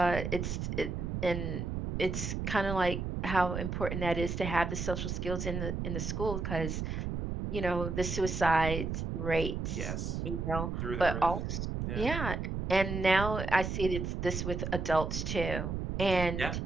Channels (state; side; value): noise; right; rumble, 3 dB below the sound